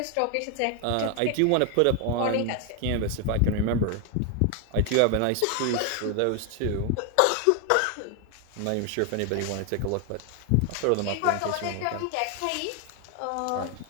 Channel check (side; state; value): both; different; correlation 0.01